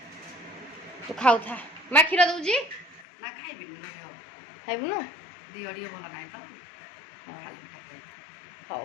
ତୁ ଖାଉଥା ମା କ୍ଷୀର ଦଉଛି ନା ଖାଇବିନି ଲୋ ଦେହ ଖାଇବୁନୁ ଦିହ ଟିକେ ଭଲ ନାହିଁ ତ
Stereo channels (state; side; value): drops out; right; at 3.1 s